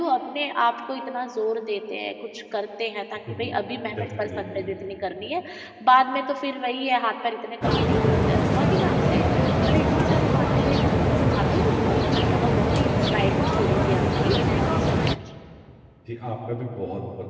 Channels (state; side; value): identical; both; correlation 1.00